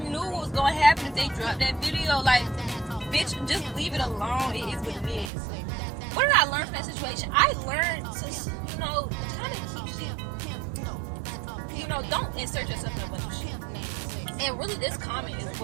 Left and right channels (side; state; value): left; drops out; at 5.3 s